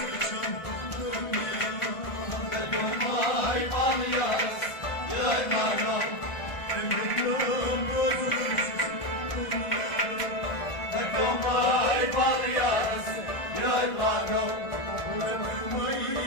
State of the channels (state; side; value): late; right; 1.4 ms